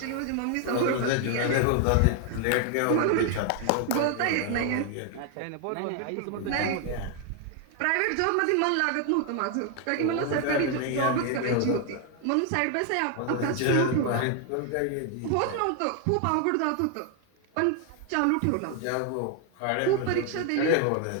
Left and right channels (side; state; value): both; different; correlation 0.00